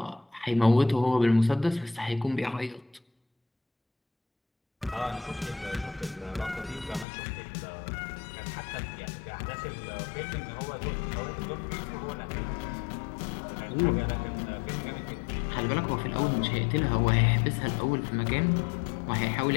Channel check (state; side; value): drops out; right; at 7.1 s